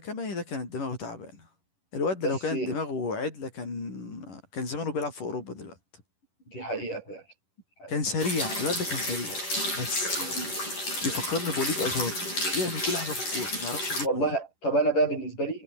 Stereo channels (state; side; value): late; right; 11 ms